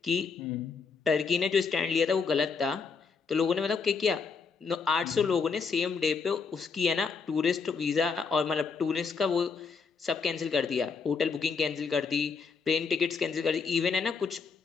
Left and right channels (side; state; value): right; quieter; 5.3 dB